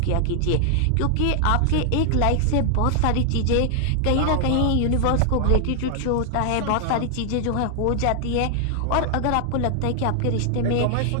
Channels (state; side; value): different; both; correlation 0.00